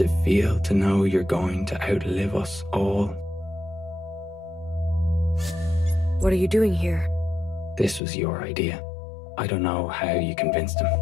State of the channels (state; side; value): drops out; right; at 8.0 s